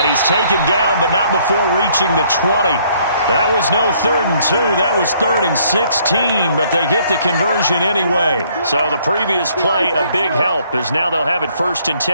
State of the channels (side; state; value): both; inverted; correlation -0.64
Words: he's taken down, but not before reaching the 20. That was no 3rd and 2. That was 3rd and 16, but they get the conversion anyway. So the previous play, a big help, as now they'll have it 1st and